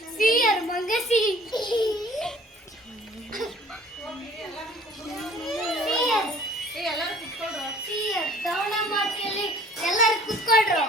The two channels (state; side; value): normal; both; correlation 0.52